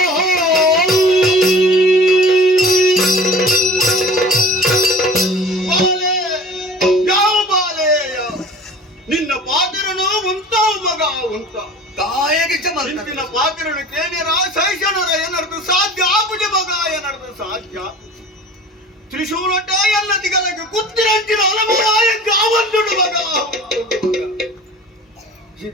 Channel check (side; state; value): both; normal; correlation 0.43